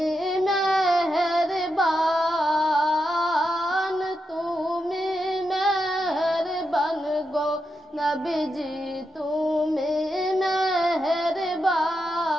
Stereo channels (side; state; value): both; normal; correlation 0.86